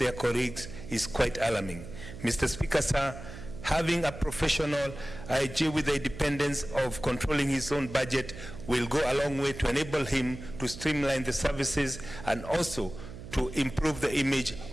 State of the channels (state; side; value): noise; right; hum, 13 dB below the sound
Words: colleagues is quite alarming. Mr. Speaker, sir, having a professional IG with the independence of controlling his own budget will go a long way to enable him to streamline the services and also to improve the image